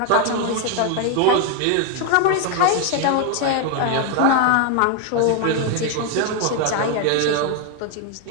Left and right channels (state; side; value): different; both; correlation 0.01